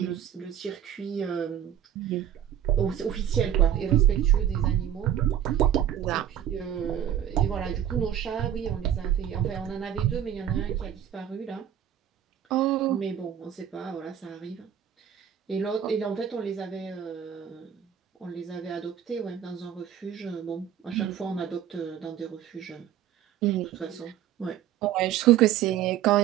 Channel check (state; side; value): quieter; left; 10.3 dB